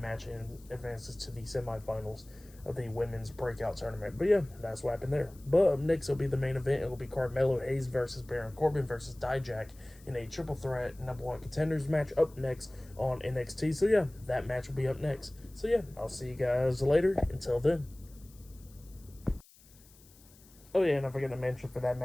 match and advances to the semifinals of the women's breakout tournament. But yeah, that's what happened there. But up next will be the main event. It will be Carmelo Hayes versus Baron Corbin versus Dijak in a triple threat #1 contenders match up next on NXT. So yeah, that match will be up next. So yeah, I'll see you guys later. Until then. Oh yeah, and I forgot to mention for that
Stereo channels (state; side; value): noise; left; hiss, 26 dB below the sound